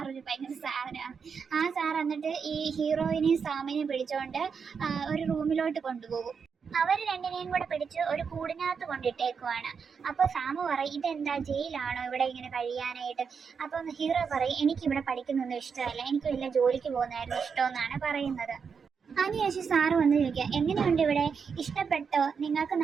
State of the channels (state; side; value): quieter; left; 6.1 dB